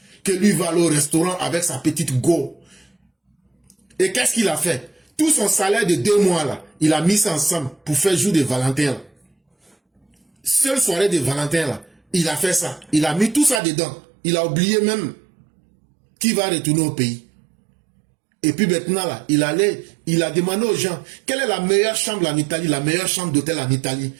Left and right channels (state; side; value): drops out; left; at 13.6 s